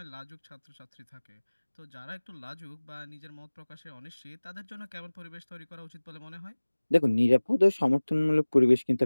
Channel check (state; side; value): inverted; both; correlation -1.00